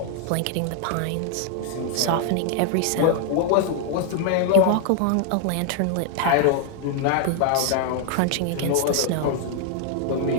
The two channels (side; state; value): both; different; correlation 0.00